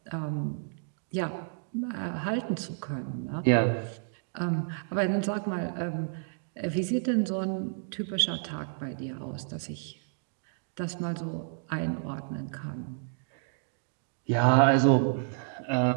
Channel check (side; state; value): left; silent; digital silence